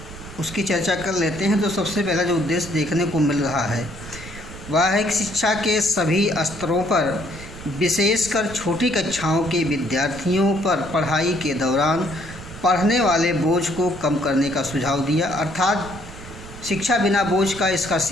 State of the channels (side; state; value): right; noise; rumble, 15 dB below the sound